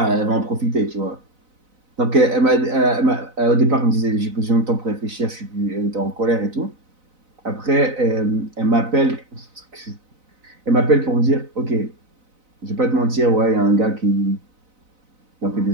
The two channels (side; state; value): left; late; 4.0 ms